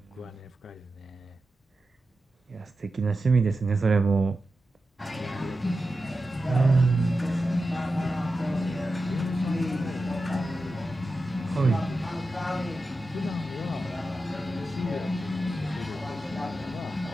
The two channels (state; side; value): normal; both; correlation 0.91